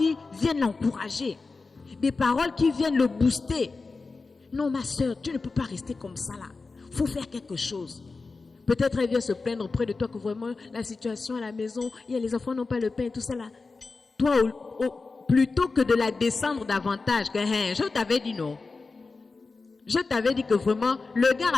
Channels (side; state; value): right; quieter; 4.0 dB